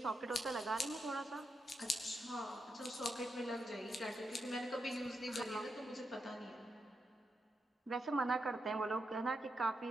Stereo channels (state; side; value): normal; both; correlation 0.84